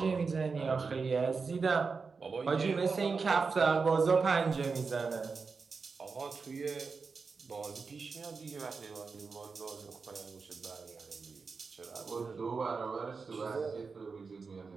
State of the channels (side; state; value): left; quieter; 4.8 dB